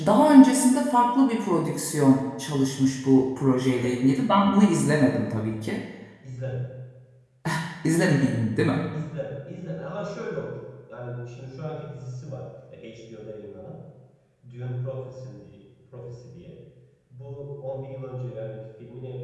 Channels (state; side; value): identical; both; correlation 1.00